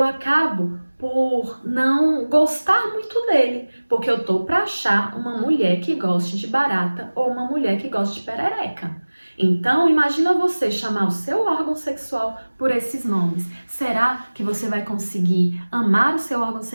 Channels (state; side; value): inverted; both; correlation -1.00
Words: acabo por não gostar muito dele, porque eu tô para achar uma mulher que goste de barata ou uma mulher que goste de perereca. Então, imagina você chamar o seu órgão sexual por esses nomes. Será que você vai conseguir amar o seu órgão